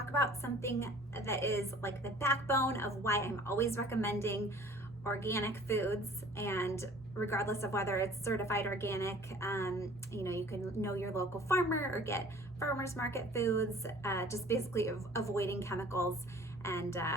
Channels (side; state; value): both; normal; correlation 0.49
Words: about something that is like the backbone of why I'm always recommending organic foods, and regardless of whether it's certified organic, you can know your local farmer or get farmers market foods, just basically avoiding chemicals and